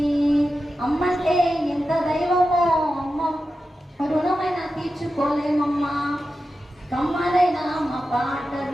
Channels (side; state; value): both; normal; correlation 0.91